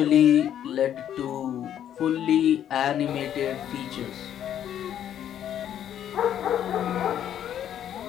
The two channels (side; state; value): right; quieter; 10.3 dB